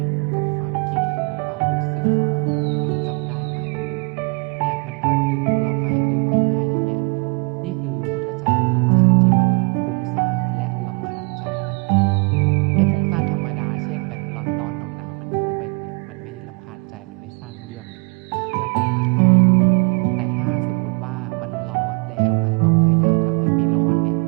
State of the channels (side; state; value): left; quieter; 31.7 dB